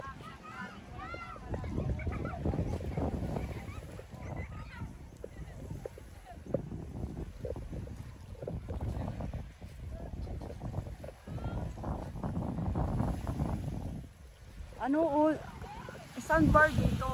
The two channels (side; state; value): both; identical; correlation 1.00